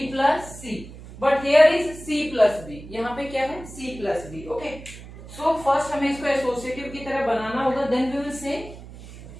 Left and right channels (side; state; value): right; noise; hum, 16 dB below the sound